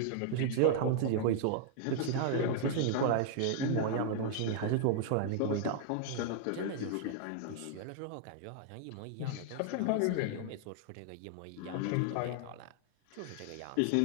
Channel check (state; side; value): different; both; correlation 0.00